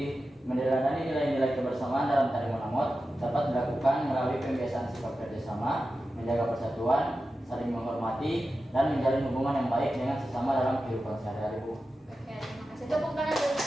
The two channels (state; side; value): normal; both; correlation 0.92